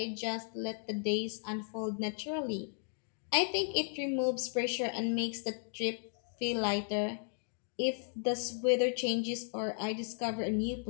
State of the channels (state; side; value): silent; right; 54 dB below the other